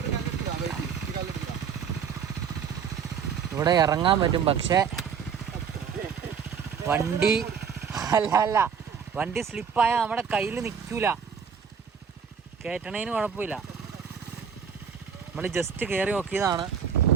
ഇവിടെ ഇറങ്ങാൻ പറ്റും, പക്ഷേ വണ്ടി അല്ല വണ്ടി സ്ലിപ്പായാൽ നമ്മുടെ കയ്യിൽ നിൽക്കൂല. കയറ്റണേന് കുഴപ്പമില്ല. നമ്മൾ ജസ്റ്റ് കയറി നോക്കിയതാണ്.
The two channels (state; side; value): quieter; left; 6.9 dB